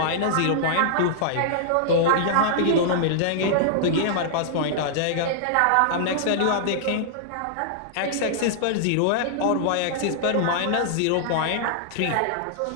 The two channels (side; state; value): both; different; correlation -0.01